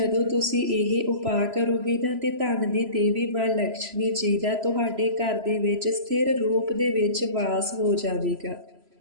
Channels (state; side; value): late; left; 3.0 ms